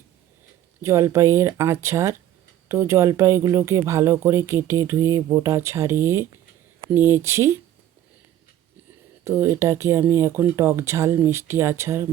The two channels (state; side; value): quieter; left; 11.9 dB